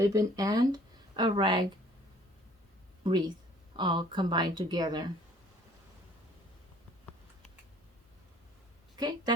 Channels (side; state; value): both; normal; correlation 0.55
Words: and a rag wreath all combined together. Okay,